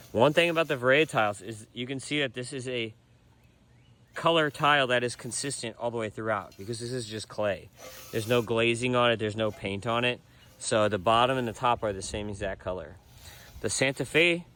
One thing about the Verea tiles is you can see that this is a color tile that is consistent all the way throughout, because this is just clay. There's no glazing on it, there's no paint on it. So the bottom and the top are the same exact color. The Santa Fe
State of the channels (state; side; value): identical; both; correlation 1.00